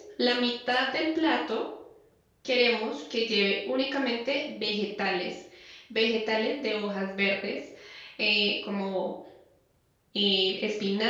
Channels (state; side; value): identical; both; correlation 1.00